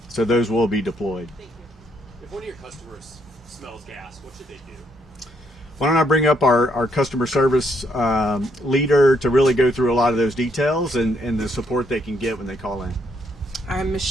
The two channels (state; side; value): normal; both; correlation 0.73